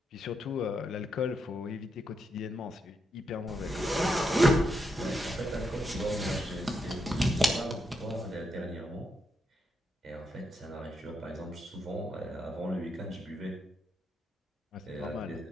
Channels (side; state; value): both; normal; correlation 0.82